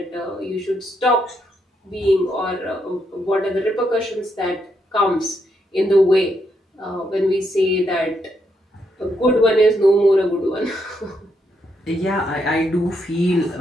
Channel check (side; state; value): both; normal; correlation 0.78